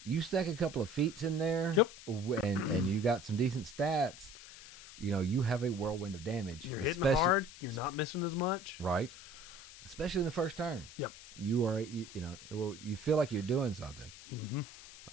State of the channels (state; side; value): noise; left; hiss, 16 dB below the sound